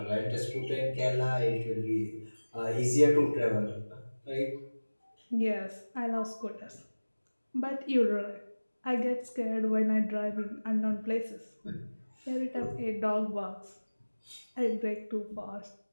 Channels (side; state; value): both; inverted; correlation -1.00